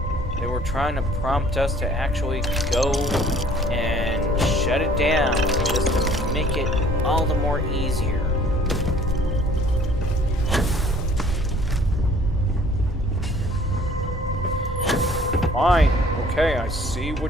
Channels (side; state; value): both; normal; correlation 0.54